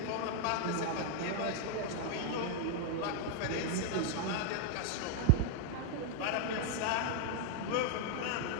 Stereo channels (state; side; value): different; both; correlation 0.00